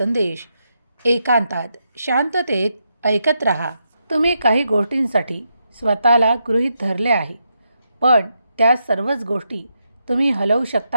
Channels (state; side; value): inverted; both; correlation -0.83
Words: एकांतात शांततेत ऐकत राहा. तुम्ही काही गोष्टींसाठी स्वतःला गृहीत धरले आहे, पण त्या सर्वच गोष्टी तुम्ही हलवू